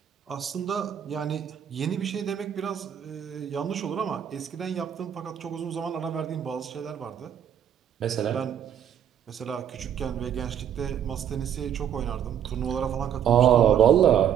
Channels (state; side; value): quieter; left; 9.3 dB